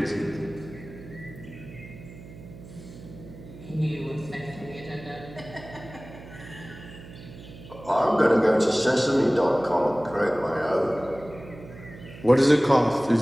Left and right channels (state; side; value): noise; right; hum, 17 dB below the sound